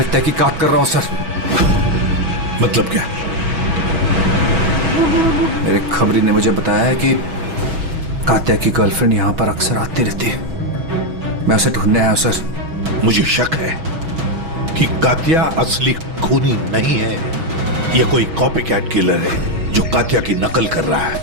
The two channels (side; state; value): left; late; 6.2 ms